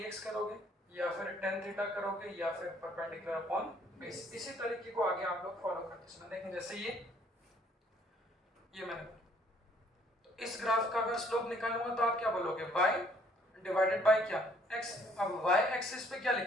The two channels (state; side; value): normal; both; correlation 0.63